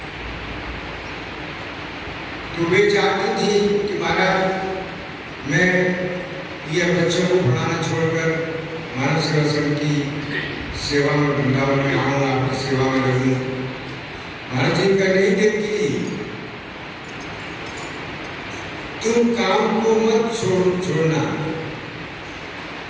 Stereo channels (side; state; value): both; identical; correlation 1.00